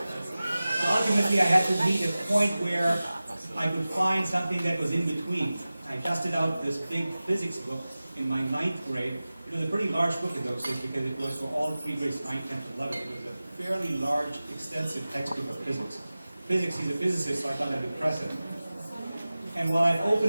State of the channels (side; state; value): both; inverted; correlation -0.96